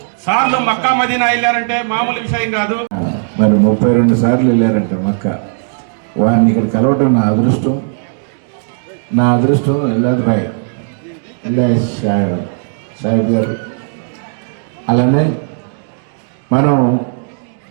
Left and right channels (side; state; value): left; silent; digital silence